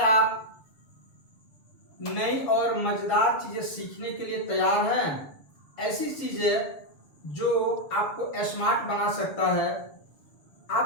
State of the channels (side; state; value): right; late; 7.0 ms